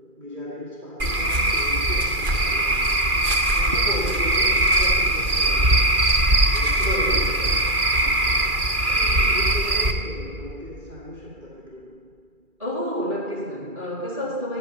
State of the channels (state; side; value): late; left; 2.4 ms